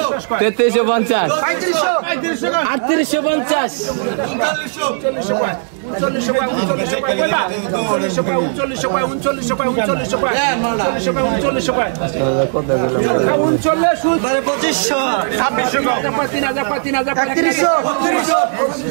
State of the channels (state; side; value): silent; left; digital silence